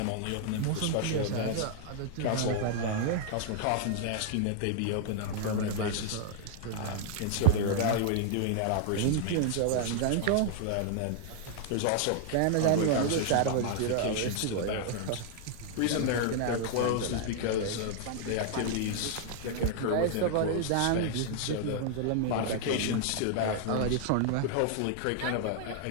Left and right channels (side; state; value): both; different; correlation -0.01